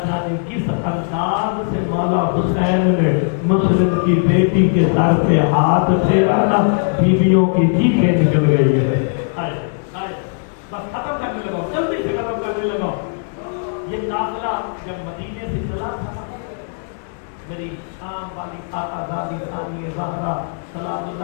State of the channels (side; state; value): right; silent; digital silence